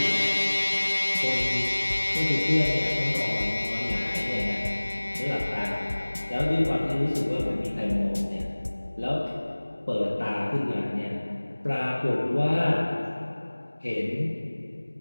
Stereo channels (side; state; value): both; inverted; correlation -1.00